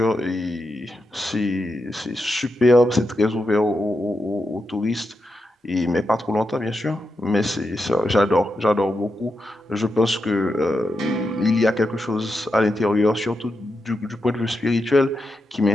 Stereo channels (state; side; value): normal; both; correlation 0.86